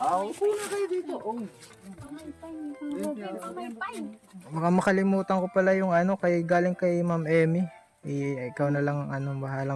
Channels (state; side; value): identical; both; correlation 1.00